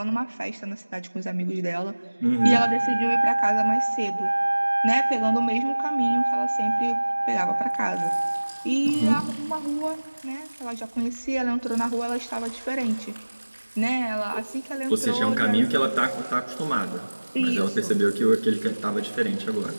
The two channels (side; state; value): both; inverted; correlation -1.00